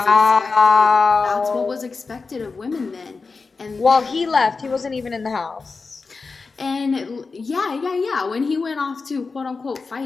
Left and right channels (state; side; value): quieter; right; 4.4 dB